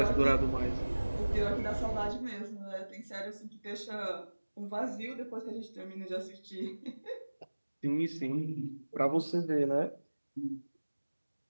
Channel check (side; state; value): both; inverted; correlation -1.00